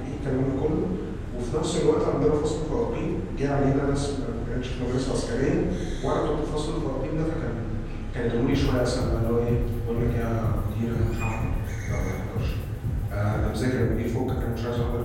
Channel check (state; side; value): identical; both; correlation 1.00